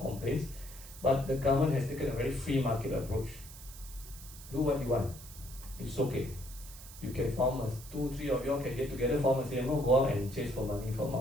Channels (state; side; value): noise; right; hiss, 16 dB below the sound